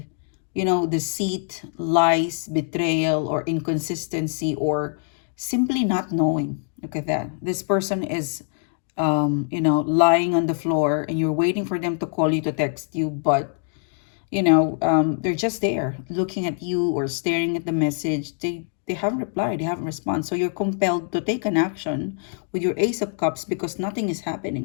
deceit, lies, betrayal, or inconsistency, or simply not knowing. Look at that. This person is, lying on the floor, and you're waiting for them to call you, to text you, but they're just there looking at you or staring at the message. They haven't replied, they haven't responded. So you're compelled to take an action with your Ace of Cups because nothing is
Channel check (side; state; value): right; silent; 60 dB below the other